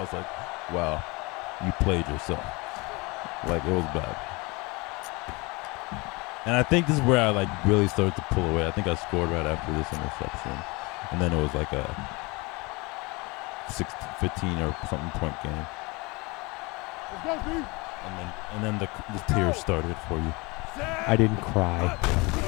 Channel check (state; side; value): quieter; right; 26.0 dB